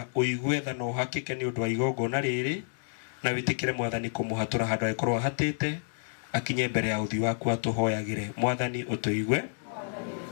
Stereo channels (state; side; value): silent; right; digital silence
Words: uigue tha no hakike ni undu wa igongona riri na witikire Mwathani kumuhatura handu akorwo hatite akinye mbere ya uthi waku atuhoyagire Mwathani utuigue